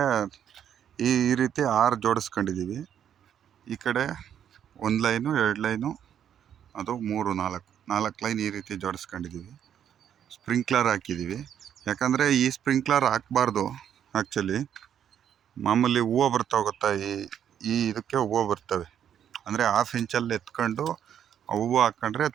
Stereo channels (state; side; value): quieter; left; 9.4 dB